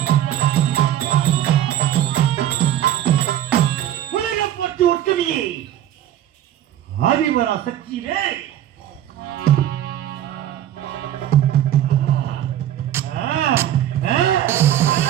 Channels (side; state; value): left; quieter; 11.5 dB